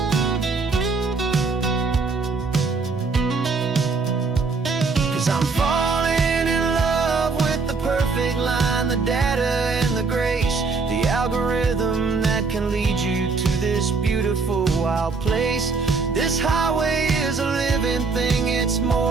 'Cause I'm falling in love with the perfect line, the data and the grace, the algorithm that can lead you to this beautiful wild place. This highway is a living thing, it's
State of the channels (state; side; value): quieter; left; 4.4 dB